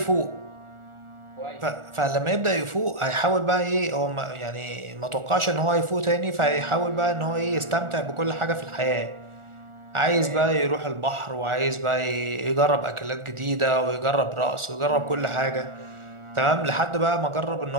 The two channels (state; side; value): late; left; 1.4 ms